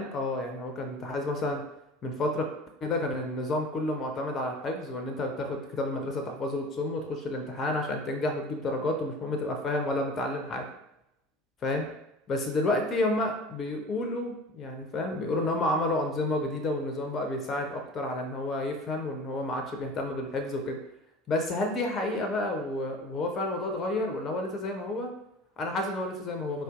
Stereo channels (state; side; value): normal; both; correlation 0.40